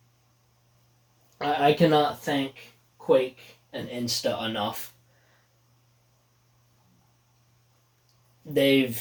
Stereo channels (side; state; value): both; identical; correlation 1.00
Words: thank Quake and Insta enough.